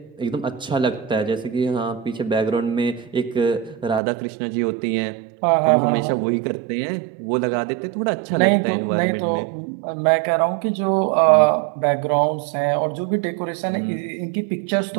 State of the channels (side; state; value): left; drops out; at 4.0 s